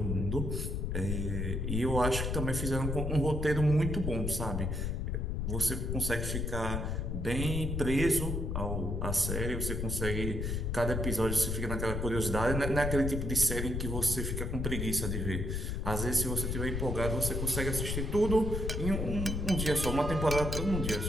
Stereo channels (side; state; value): left; noise; rumble, 1 dB below the sound